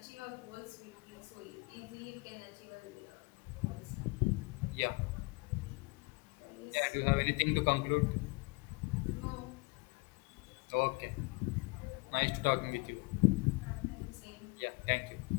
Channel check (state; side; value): quieter; right; 27.4 dB